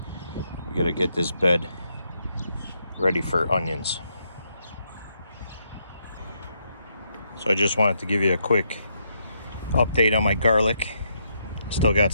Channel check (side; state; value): both; inverted; correlation -0.77